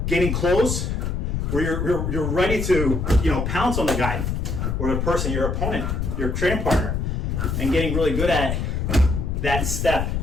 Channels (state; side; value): noise; left; rumble, 1 dB below the sound